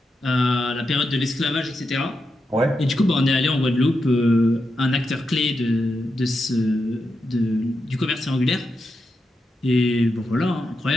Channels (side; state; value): both; normal; correlation 0.87